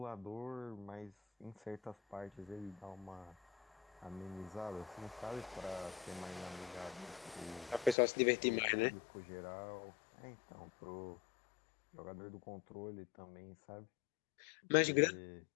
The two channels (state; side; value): drops out; right; at 8.0 s